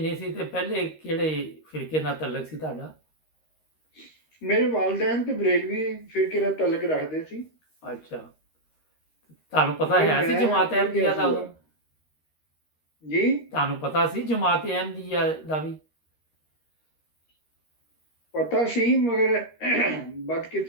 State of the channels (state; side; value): late; right; 13 ms